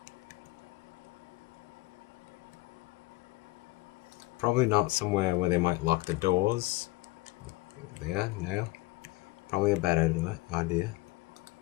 Probably not somewhere where they might lock the doors. There, no. Probably a bad idea.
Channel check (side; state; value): right; quieter; 20.8 dB